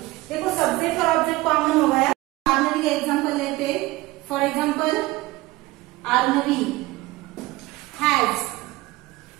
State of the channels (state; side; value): quieter; left; 19.5 dB